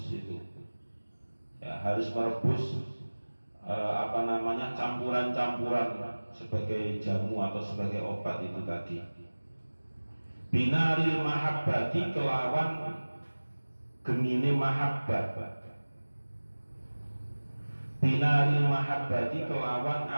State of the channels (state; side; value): inverted; both; correlation -1.00